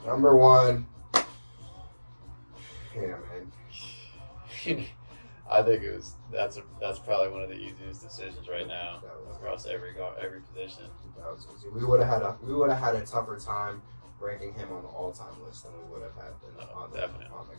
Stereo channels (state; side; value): inverted; both; correlation -1.00